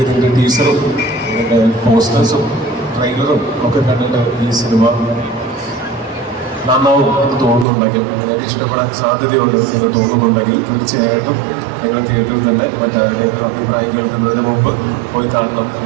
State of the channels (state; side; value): drops out; left; at 7.7 s